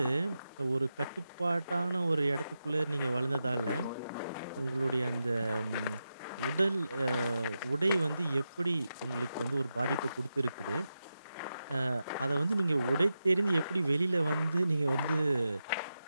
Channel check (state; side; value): inverted; both; correlation -0.89